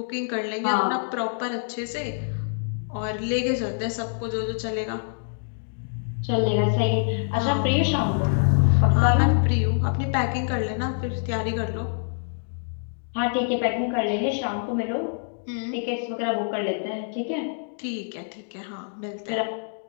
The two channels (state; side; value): silent; right; digital silence